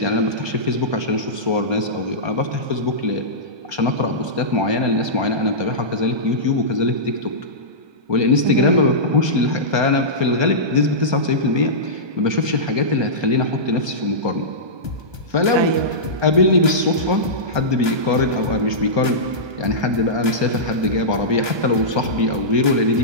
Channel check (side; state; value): left; late; 1.2 ms